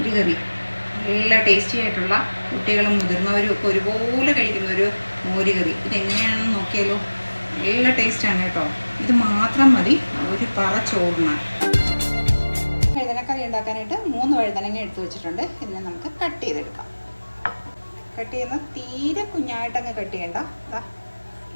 നല്ല ടേസ്റ്റി ആയിട്ടുള്ള കുട്ടികളും മുതിർന്നവരും ഒക്കെ ഒരുപോലെ കഴിക്കുന്ന ഒരു മോരുകറി. ഇതെങ്ങനെയാണെന്ന് നോക്കിയാലോ. നല്ല ടേസ്റ്റാണ് കേട്ടോ. ഇത് മാത്രം മതി ഒരു പറ ചോറിന്. വഴുതനക്കറി ഉണ്ടാക്കാനായിട്ട് 3 വഴുതനങ്ങ എടുത്തു വെച്ചിട്ടുണ്ട്. ഇതിനെ നമുക്ക് കട്ട് ചെയ്തെടുക്കാം. കട്ട് ചെയ്യുന്ന തീരെ കുഞ്ഞായിട്ടങ്ങ് കട്ട് ചെയ്യണ്ട,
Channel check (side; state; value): both; inverted; correlation -1.00